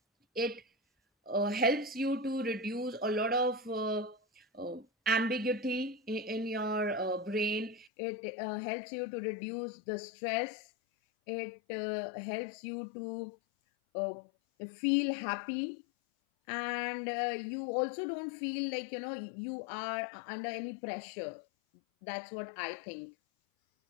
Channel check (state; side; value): drops out; right; at 7.9 s